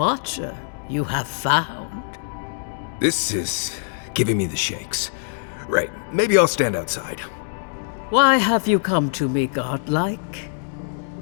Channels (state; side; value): silent; right; 63 dB below the other